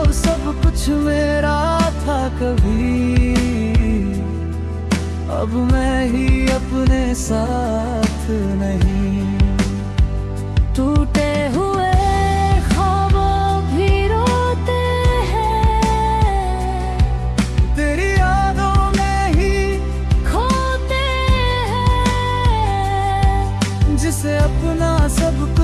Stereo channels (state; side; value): identical; both; correlation 1.00